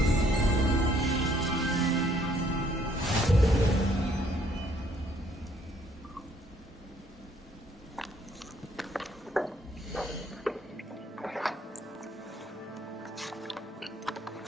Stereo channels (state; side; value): normal; both; correlation 0.65